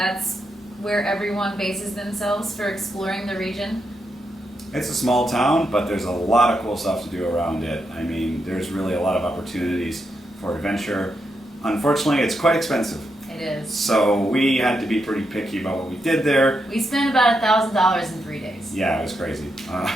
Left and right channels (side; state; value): both; normal; correlation 0.83